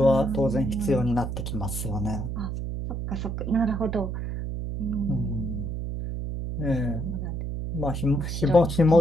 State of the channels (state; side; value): noise; right; hum, 4 dB below the sound